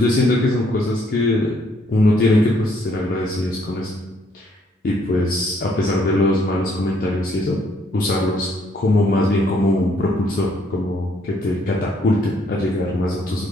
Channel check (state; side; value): normal; both; correlation 0.67